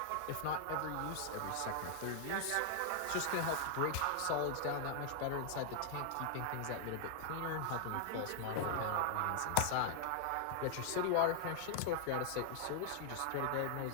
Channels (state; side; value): different; both; correlation 0.00